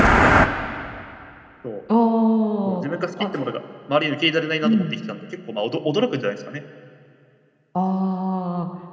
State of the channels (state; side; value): identical; both; correlation 1.00